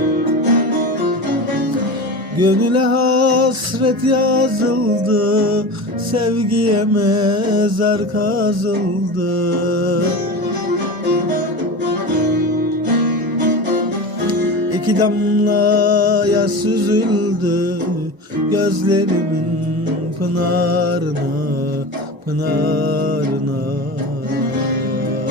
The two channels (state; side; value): late; left; 1.0 ms